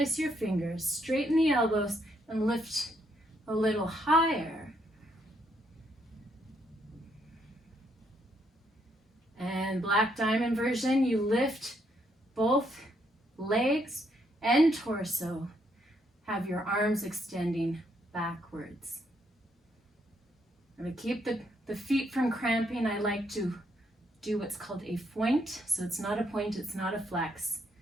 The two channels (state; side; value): normal; both; correlation 0.74